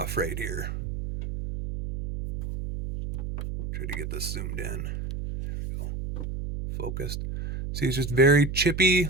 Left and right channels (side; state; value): right; noise; hum, 5 dB below the sound